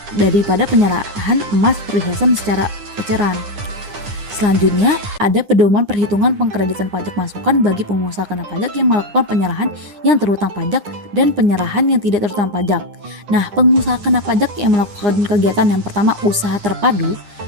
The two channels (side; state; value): left; late; 9.8 ms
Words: penyerahan emas perhiasan secara eceran. Selanjutnya, ada pedoman perhitungan pengkreditan pajak masukan bagi pengusaha kena pajak yang melakukan penyerahan yang terutang pajak dan penyerahan yang tidak terutang pajak. Nah, pengusaha kena pajak yang melakukan kegiatan yang pertama, usaha terpadu